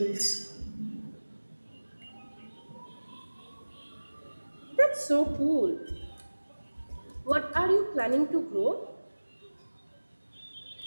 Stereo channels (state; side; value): inverted; both; correlation -1.00